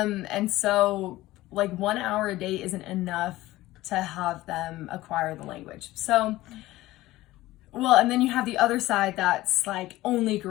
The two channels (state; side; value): quieter; right; 17.2 dB